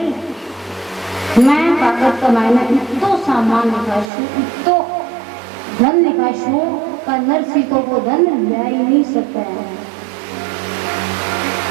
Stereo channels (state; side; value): drops out; left; at 4.1 s